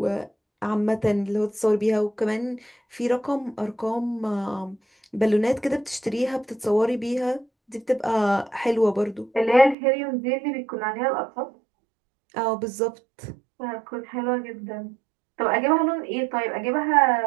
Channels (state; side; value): drops out; left; at 9.8 s